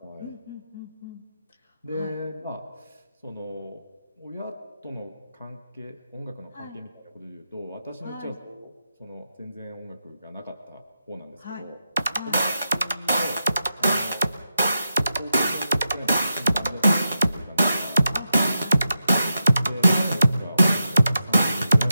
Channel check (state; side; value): inverted; both; correlation -0.88